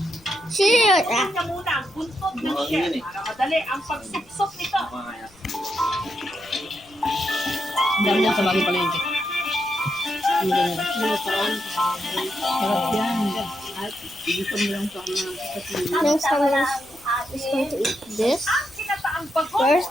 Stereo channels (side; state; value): left; noise; rumble, 28 dB below the sound